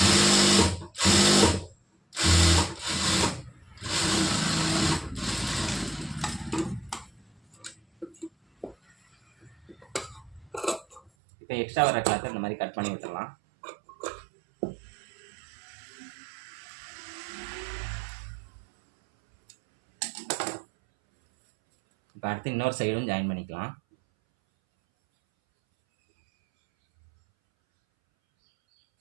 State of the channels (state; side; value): drops out; left; at 11.1 s